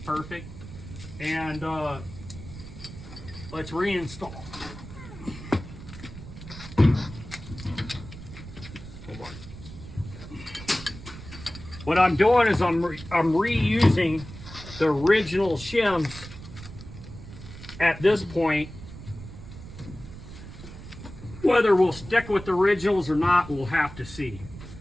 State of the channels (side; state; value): right; noise; rumble, 14 dB below the sound